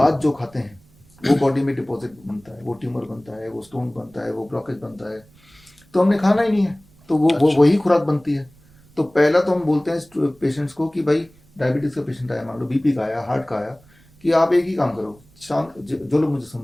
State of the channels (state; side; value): noise; right; rumble, 28 dB below the sound